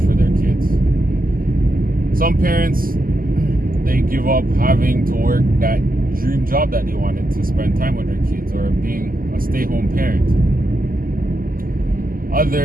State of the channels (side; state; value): left; late; 0.42 ms